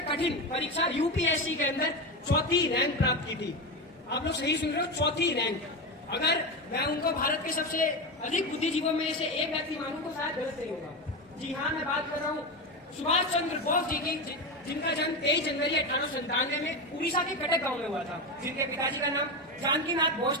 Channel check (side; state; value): both; normal; correlation 0.18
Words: कठिन परीक्षा यूपीएससी के अंदर 4थी रैंक प्राप्त की थी। आप लोग सही सुन रहे हो, 4थी रैंक। अगर मैं उनको भारत के सबसे अधिक बुद्धिजीवियों में से एक व्यक्ति मानूं तो शायद गलत नहीं होगा। जी हाँ, मैं बात कर रहा हूँ सुभाष चंद्र बोस जी की, जिनका जन्म 23 जनवरी 1897 में उड़ीसा के कटक गांव में हुआ था, जिनके पिताजी का नाम जानकीनाथ बोस